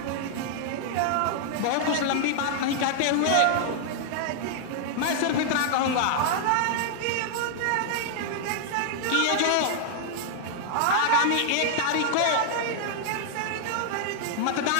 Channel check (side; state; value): both; different; correlation -0.01